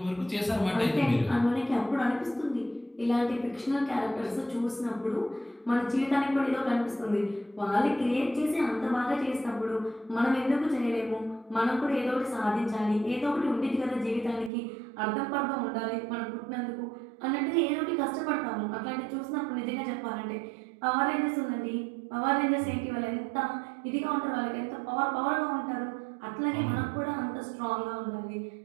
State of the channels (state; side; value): drops out; left; at 14.5 s